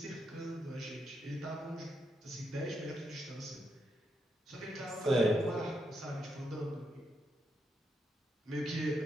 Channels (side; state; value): both; normal; correlation 0.82